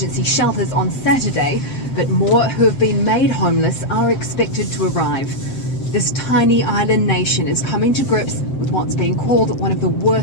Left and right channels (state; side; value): late; right; 7.7 ms